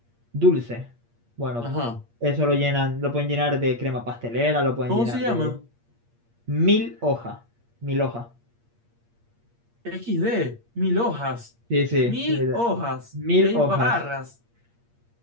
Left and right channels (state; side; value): late; left; 8.5 ms